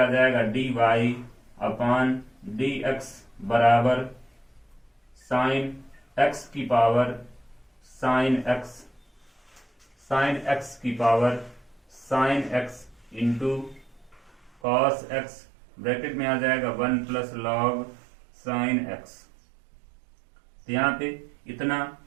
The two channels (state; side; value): drops out; left; at 14.5 s